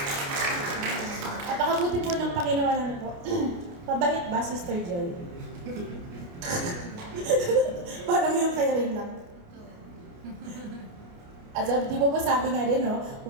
At pakabuti po ng Panginoon po. Pabait ba, Sister Joy? Parang yung kay rin lang. At di ba sabi nga din, no?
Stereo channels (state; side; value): late; left; 29 ms